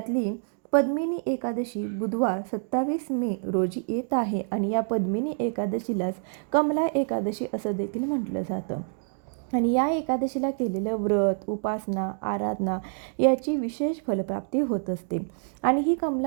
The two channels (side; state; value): left; silent; 60 dB below the other